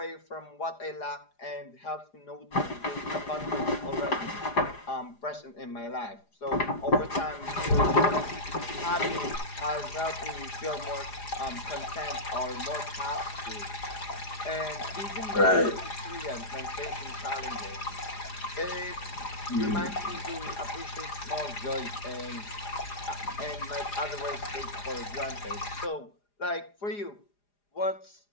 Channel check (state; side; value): late; right; 4.9 ms